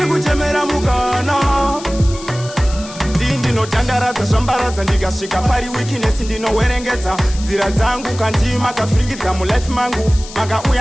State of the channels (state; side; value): noise; left; hiss, 15 dB below the sound